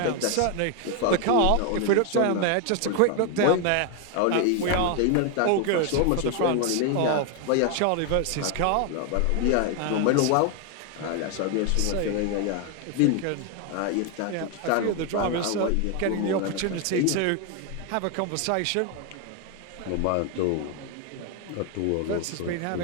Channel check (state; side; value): different; both; correlation 0.01